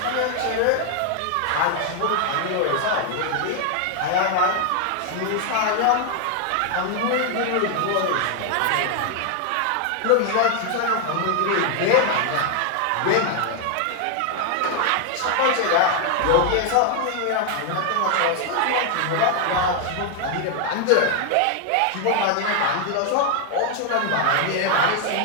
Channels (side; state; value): both; different; correlation 0.00